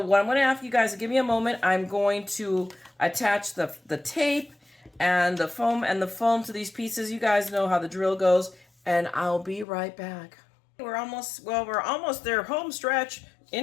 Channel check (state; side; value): drops out; right; at 9.7 s